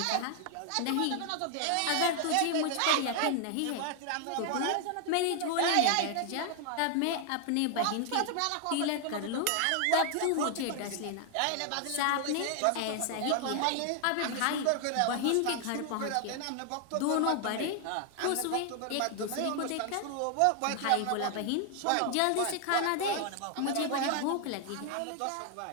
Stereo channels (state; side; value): different; both; correlation 0.00